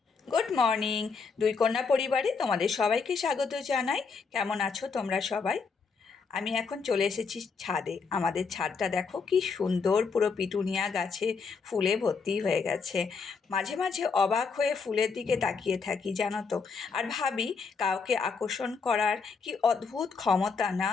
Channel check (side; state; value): right; quieter; 5.2 dB